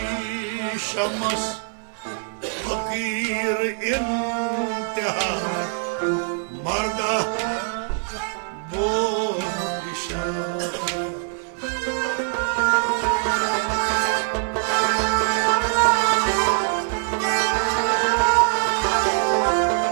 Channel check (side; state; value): left; silent; 58 dB below the other